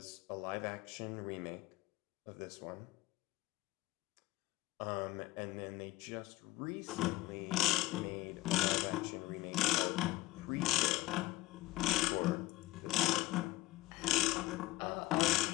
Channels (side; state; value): right; quieter; 18.7 dB